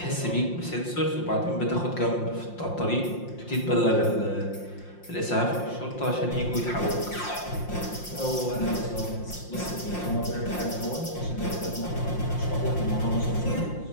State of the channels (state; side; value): late; right; 5.7 ms